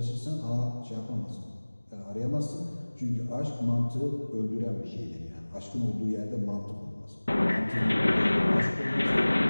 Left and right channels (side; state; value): both; inverted; correlation -1.00